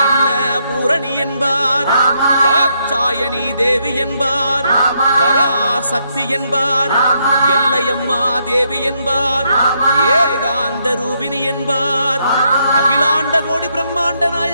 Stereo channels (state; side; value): inverted; both; correlation -0.76